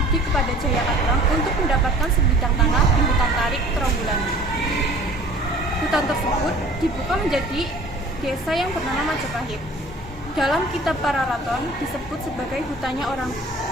kepada Jayakatwang untuk mendapatkan sebidang tanah di hutan tarik Trawulan. Hutan tersebut dibuka menjadi desa yang bernama Majapahit. Dalam kitab Pararaton disebut sebagai hutannya orang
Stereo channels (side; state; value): both; normal; correlation 0.48